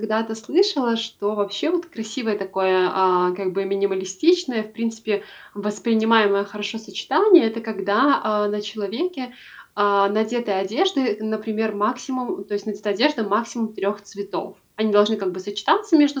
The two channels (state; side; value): identical; both; correlation 1.00